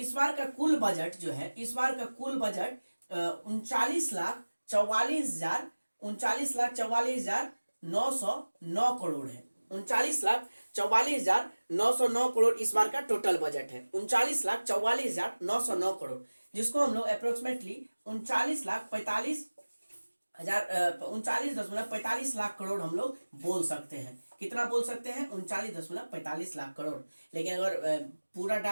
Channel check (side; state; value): both; inverted; correlation -1.00